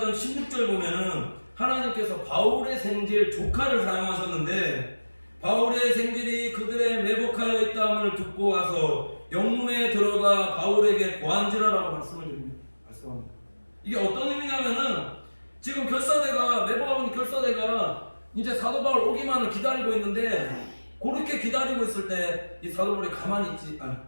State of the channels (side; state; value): both; inverted; correlation -1.00